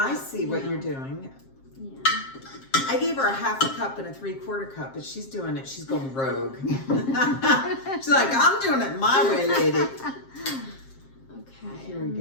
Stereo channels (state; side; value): late; right; 7.5 ms